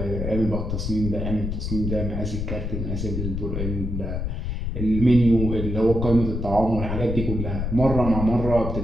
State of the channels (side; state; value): left; noise; rumble, 3 dB below the sound